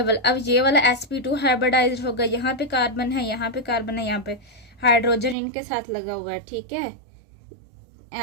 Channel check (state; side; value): drops out; left; at 5.4 s